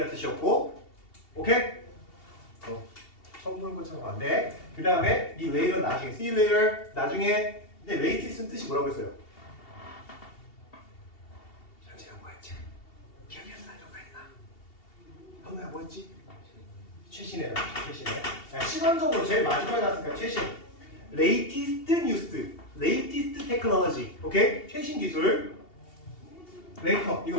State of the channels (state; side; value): late; right; 2.7 ms